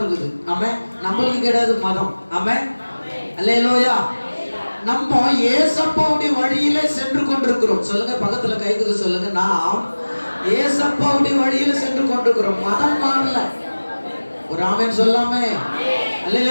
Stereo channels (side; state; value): both; inverted; correlation -1.00